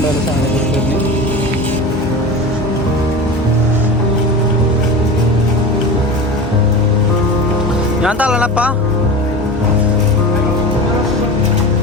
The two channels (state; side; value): normal; both; correlation 0.30